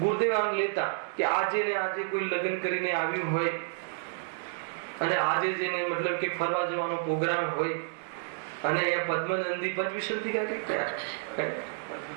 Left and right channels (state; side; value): silent; left; digital silence